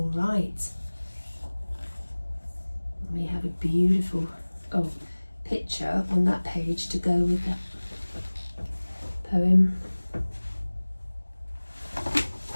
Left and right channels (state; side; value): inverted; both; correlation -1.00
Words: right. We have a beautiful picture on that page to go with that poem.